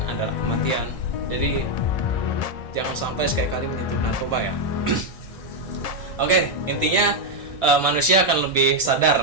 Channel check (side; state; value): right; late; 1.8 ms